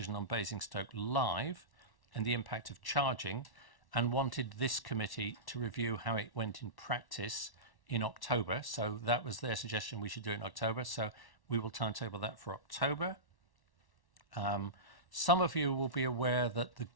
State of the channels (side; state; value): right; late; 1.1 ms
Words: on Basingstoke Live and the impact of charging, and wanted this committee to review how it went in practice in October. So that was their suggestion, we should do it in October. So we will timetable that for October. Some of you will be aware that the